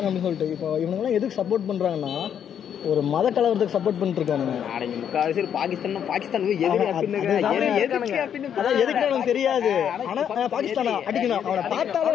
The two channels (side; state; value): right; quieter; 8.8 dB